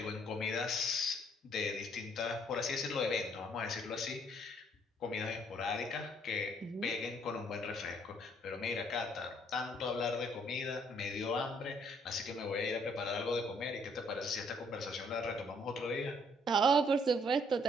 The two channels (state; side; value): normal; both; correlation 0.65